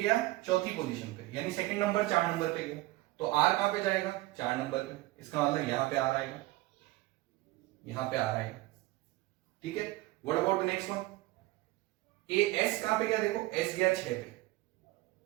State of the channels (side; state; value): left; quieter; 19.0 dB